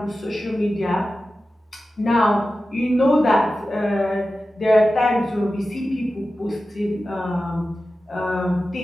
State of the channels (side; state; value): both; normal; correlation 0.94